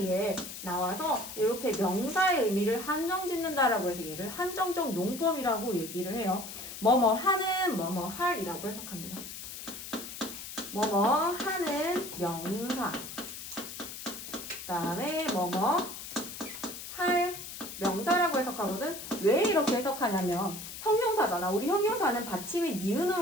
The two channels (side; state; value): left; noise; hiss, 10 dB below the sound